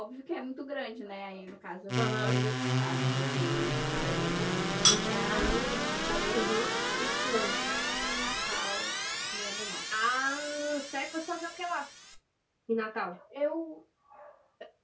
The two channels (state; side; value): identical; both; correlation 1.00